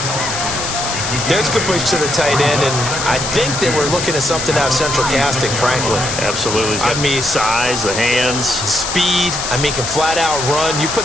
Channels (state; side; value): noise; left; hiss, 4 dB below the sound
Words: There's a good push to the tight end, and I think they were looking at something out of central casting, frankly. Absolutely. I mean, size, the hands. Speed, I mean, can flat out run. You